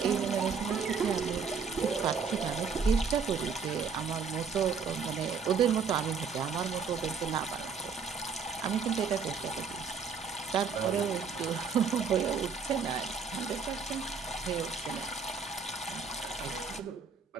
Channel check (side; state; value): left; quieter; 5.6 dB